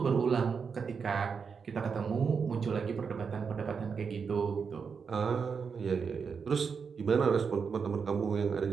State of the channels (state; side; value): quieter; left; 5.9 dB